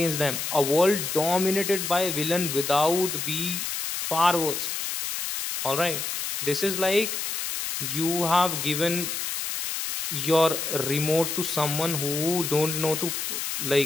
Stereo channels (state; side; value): noise; left; hiss, 3 dB below the sound